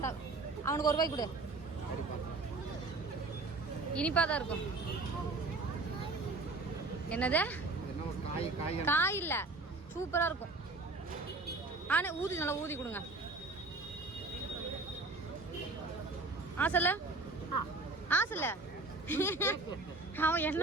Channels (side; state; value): left; quieter; 3.3 dB